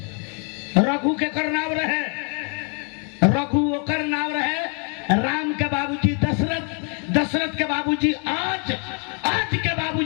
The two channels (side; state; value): right; quieter; 39.0 dB